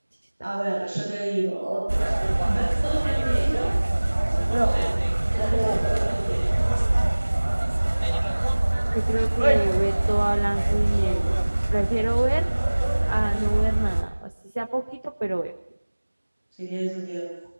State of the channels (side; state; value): both; inverted; correlation -1.00